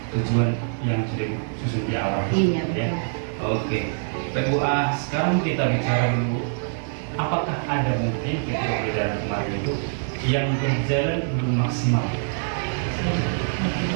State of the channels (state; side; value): silent; left; digital silence